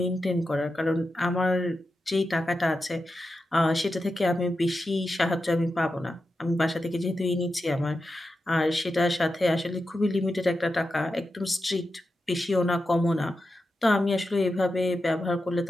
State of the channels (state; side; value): normal; both; correlation 0.90